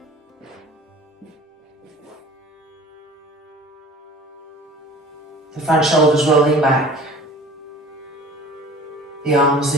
The front shoulders rolling back, the arms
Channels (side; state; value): both; normal; correlation 0.43